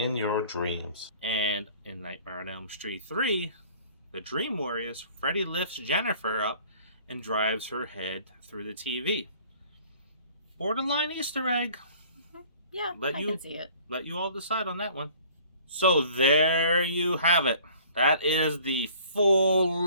your dreams." And in Nightmare on Elm Street 3, the Dream Warriors, Freddy lifts Jennifer up and drives her head through the TV. Borderline Easter egg. Yeah, I can see it. Let you all decide on that one. So there you have it. That is the full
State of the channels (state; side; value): inverted; both; correlation -0.52